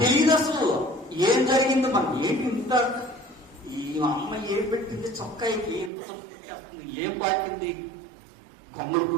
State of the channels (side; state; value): left; drops out; at 5.9 s